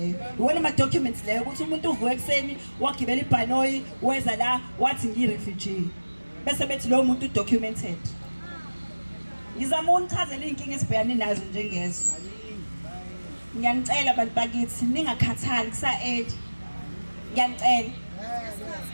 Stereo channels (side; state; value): both; inverted; correlation -1.00